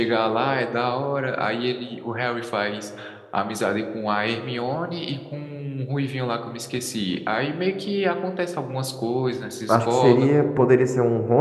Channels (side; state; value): both; identical; correlation 1.00